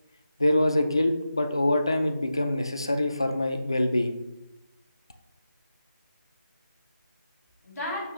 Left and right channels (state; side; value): inverted; both; correlation -0.90